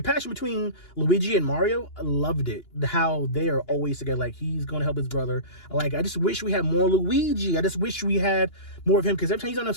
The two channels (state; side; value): late; right; 2.9 ms